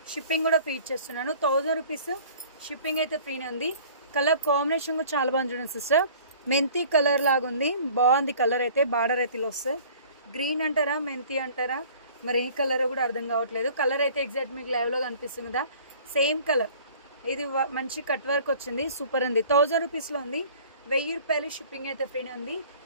షిప్పింగ్ కూడా ఫ్రీ ఇచ్చేస్తున్నాను. 1000 రూపీస్ షిప్పింగ్ అయితే ఫ్రీనే ఉంది. కలర్ కాంబినేషన్ కూడా చాలా బాగుంది చూడండి సిస్టర్. మెంతి కలర్ లాగా ఉంది, బాగుంది కలర్ అయితే. బార్డర్ అయితే ఇలా వస్తుంది. గ్రీన్ అంటారా మెంతి అంటారా మరి ఏ కలర్ కూడా అర్థం కావట్లేదు. కలర్ అయితే ఎగ్జాక్ట్ మీకు లైవ్లో కనిపిస్తుంది కదా, సేమ్ కలర్. ఇది మంచి కట్ వర్క్ వచ్చింది, సూపర్ ఉంది. 1000 రూపీస్లో ఉంది. 1000 రూపాయలు షిప్పింగ్ అయితే ఫ్రీనే ఉంది.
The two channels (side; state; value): both; inverted; correlation -0.49